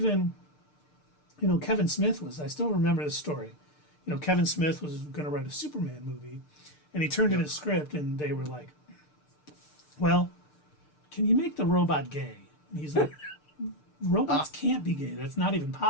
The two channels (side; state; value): right; late; 6.7 ms